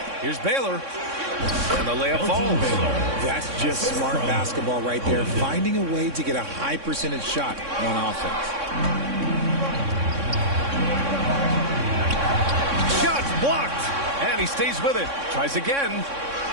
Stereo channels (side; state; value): left; late; 3.6 ms